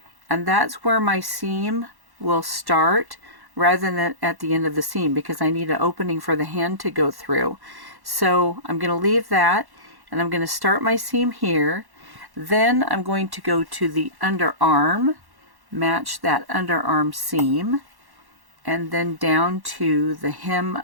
and that's where my seam will start rather than at the end of the seam, because I need an opening for the hand to go through. So I'm going to leave that, and I'm going to start my seam here. Then I'm going to go to the underarm, match that underarm seam, and then down to the hem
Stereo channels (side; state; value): left; late; 1.1 ms